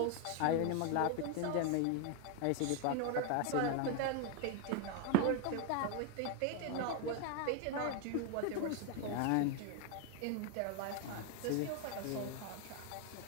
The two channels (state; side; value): different; both; correlation 0.01